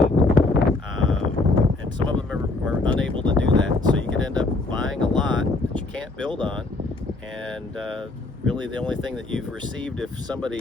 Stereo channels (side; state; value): right; quieter; 3.1 dB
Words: and some of them are unable to do that, so you could end up buying a lot that you can't build on, and really the only thing that you've received, if